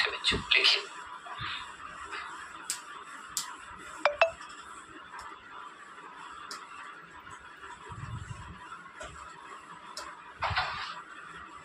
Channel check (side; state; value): both; identical; correlation 1.00